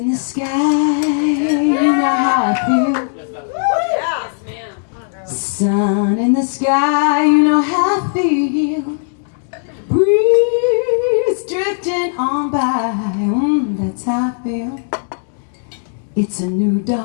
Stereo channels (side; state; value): right; silent; 63 dB below the other